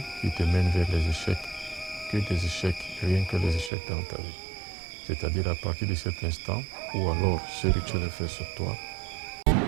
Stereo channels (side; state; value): left; drops out; at 3.7 s